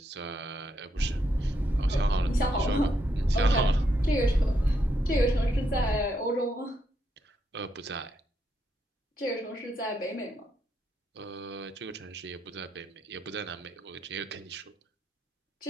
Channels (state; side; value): normal; both; correlation 0.79